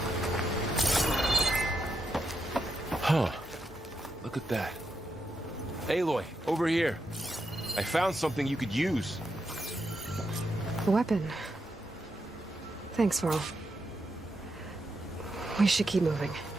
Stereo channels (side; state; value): both; normal; correlation 0.84